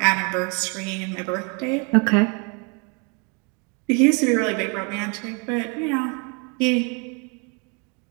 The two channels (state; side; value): quieter; left; 34.0 dB